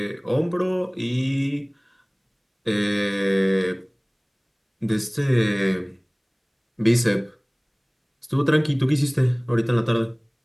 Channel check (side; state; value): both; identical; correlation 1.00